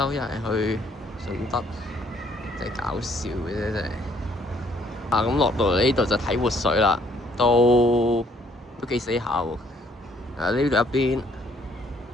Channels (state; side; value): normal; both; correlation 0.65